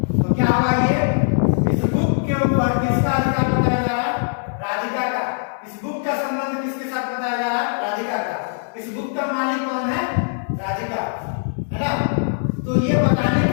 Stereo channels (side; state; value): right; silent; 65 dB below the other